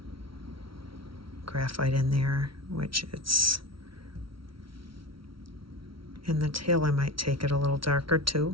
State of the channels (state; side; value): late; left; 0.75 ms